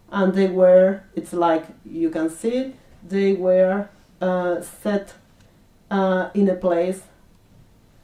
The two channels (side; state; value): both; identical; correlation 1.00